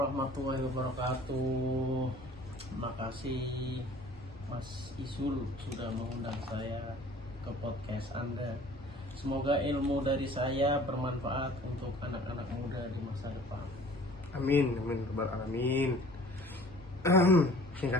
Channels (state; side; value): normal; both; correlation 0.49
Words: wabarakatuh. Terima kasih Mas Isul sudah mengundang saya ke podcast Anda. Semoga ilmu dari saya bermanfaat untuk anak-anak muda di masa depan. Amin, amin, rabbal alamin.